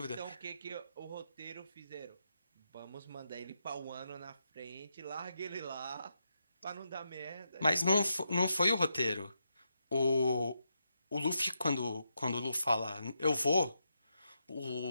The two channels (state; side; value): inverted; both; correlation -0.83